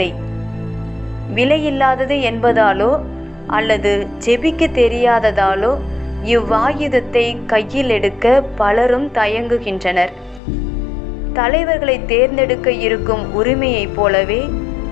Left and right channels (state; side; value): drops out; right; at 10.4 s